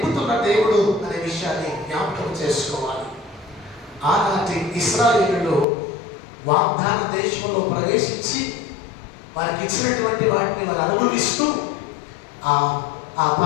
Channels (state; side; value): drops out; right; at 5.7 s